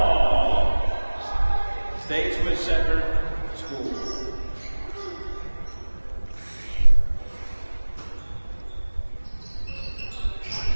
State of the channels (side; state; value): both; inverted; correlation -1.00